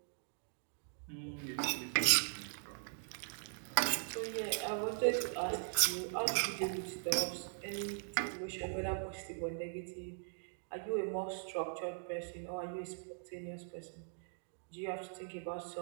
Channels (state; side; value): silent; left; digital silence